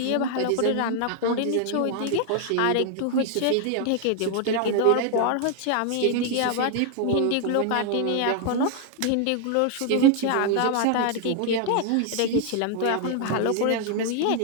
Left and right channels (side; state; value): both; different; correlation 0.00